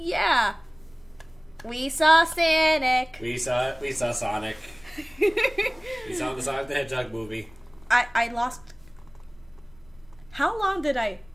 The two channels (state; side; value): noise; left; rumble, 27 dB below the sound